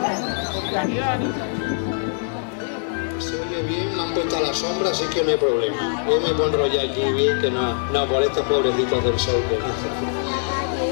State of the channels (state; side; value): silent; right; digital silence